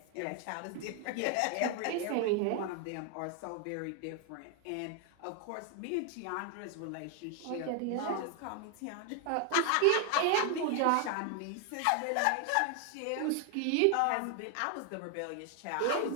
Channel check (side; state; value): both; different; correlation 0.00